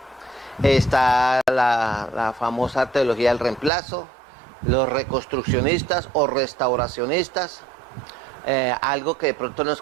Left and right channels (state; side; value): drops out; left; at 3.7 s